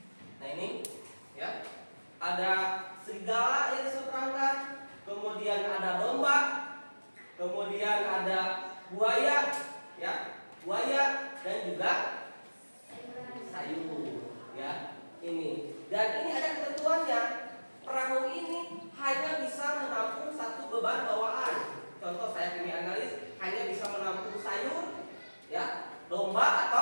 Nah ini, ya, ada serigala yang diseberangkan. Kemudian ada domba. Kemudian ada buaya, ya, buaya dan juga sayur, ya. Ini. Dan ini ada ketentuannya. Perahu ini hanya bisa menampung satu beban bawaan. Contoh saya kimia analis hanya bisa menampung sayur, ya, domba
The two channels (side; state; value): both; inverted; correlation -1.00